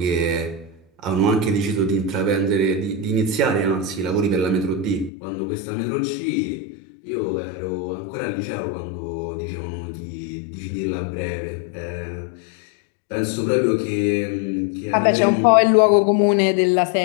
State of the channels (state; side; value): drops out; right; at 5.1 s